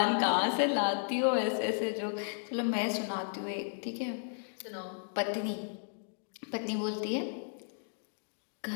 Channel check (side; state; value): right; silent; digital silence